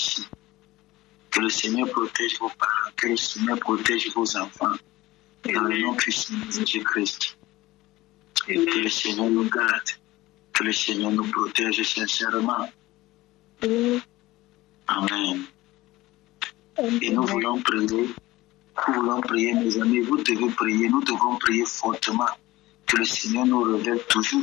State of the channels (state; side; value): quieter; right; 18.2 dB